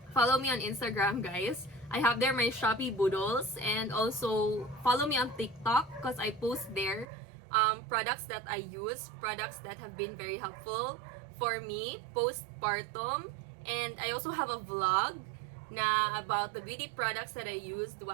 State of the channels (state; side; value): drops out; left; at 7.1 s